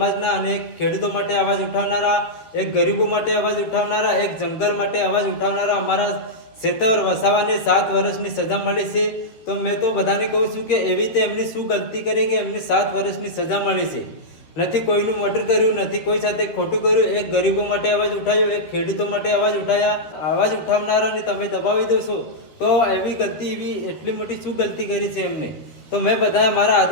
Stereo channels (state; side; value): late; right; 13 ms